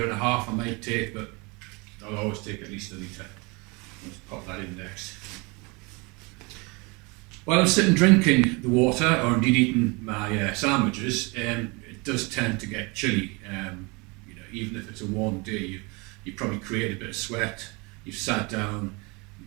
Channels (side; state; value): left; quieter; 28.2 dB